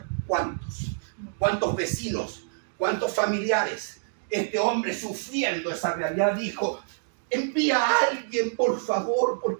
¿Cuántos? ¿Cuántos vecinos? ¿Cuántos familiares? Este hombre, sufriendo esa realidad, dijo, envía a alguien, por favor,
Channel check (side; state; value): left; silent; digital silence